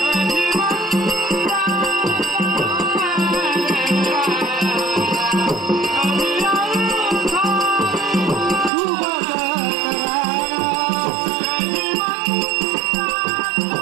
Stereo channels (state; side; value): drops out; left; at 8.7 s